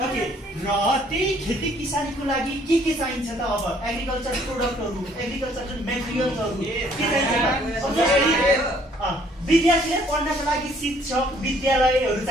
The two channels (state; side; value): normal; both; correlation 0.62